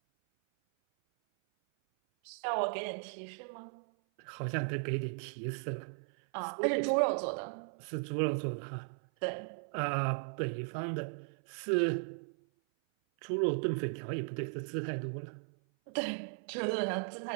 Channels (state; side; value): silent; left; 53 dB below the other